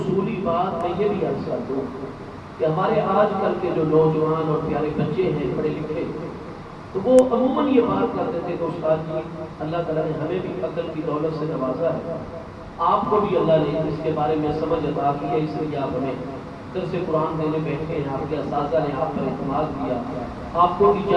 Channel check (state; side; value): identical; both; correlation 1.00